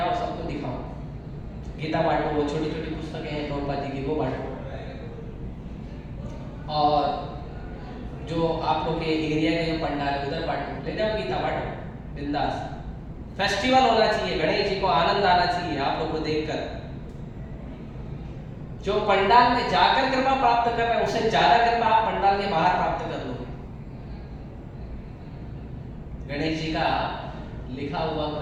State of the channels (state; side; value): identical; both; correlation 1.00